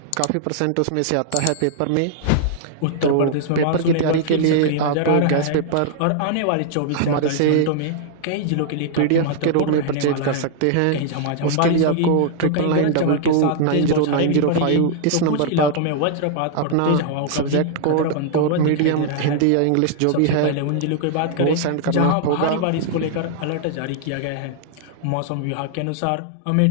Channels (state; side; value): different; both; correlation -0.01